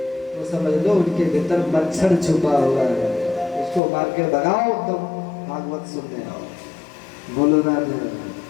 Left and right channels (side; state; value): right; drops out; at 3.8 s